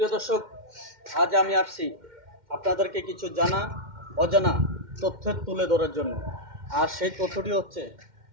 সুপ্রিয় দর্শক, আজ আমি আসছি আপনাদেরকে কিছু জানা অজানা তথ্য তুলে ধরার জন্য। আর সেই তথ্যটি হচ্ছে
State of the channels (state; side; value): late; left; 2.1 ms